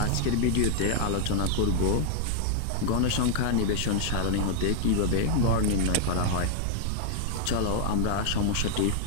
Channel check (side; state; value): both; different; correlation 0.00